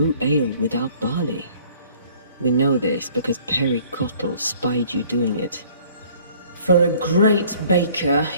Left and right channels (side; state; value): both; inverted; correlation -0.56